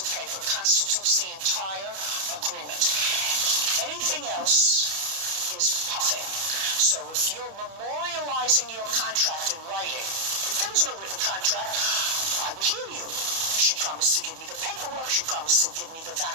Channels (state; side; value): late; left; 31 ms